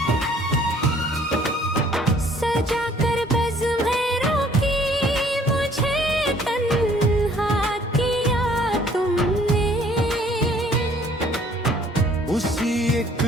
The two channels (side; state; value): both; normal; correlation 0.59